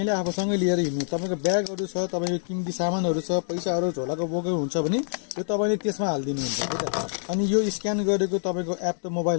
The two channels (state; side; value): silent; right; digital silence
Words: आफूसँगै लिएर हिँड्नु। तपाईको ब्यागहरु छ, तपाईको किमती सामानहरु छ, पैसाहरु झोलाको बोकेको हुन्छ भने यो तपाईले त्यसमा हाल्दिनु हुन्छ। अनि यो स्क्यान गरेको तपाईको एप त